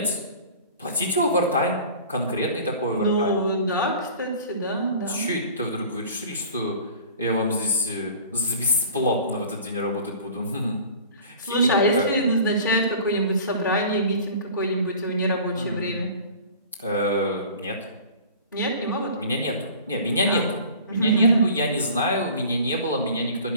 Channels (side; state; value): both; inverted; correlation -0.44